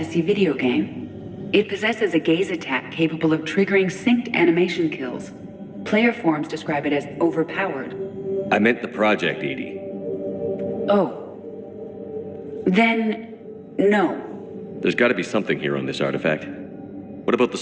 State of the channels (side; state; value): both; identical; correlation 1.00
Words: video game. It possesses a gaze attack capable of triggering synced animation kills. Player forums describe it as overpowered. I meant the project, Edie. Oh. Then, no. There's got to be something here on this artifact. What about the